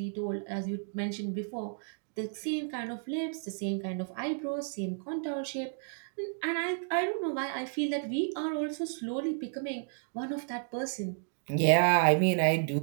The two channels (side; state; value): left; silent; digital silence